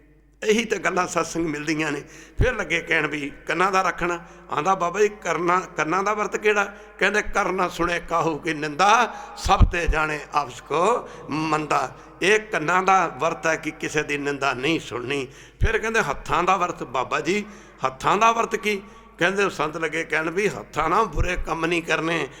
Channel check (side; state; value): both; identical; correlation 1.00